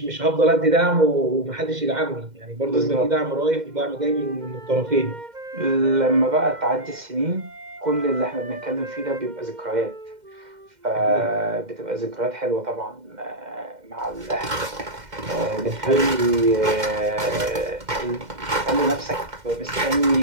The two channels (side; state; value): left; late; 2.1 ms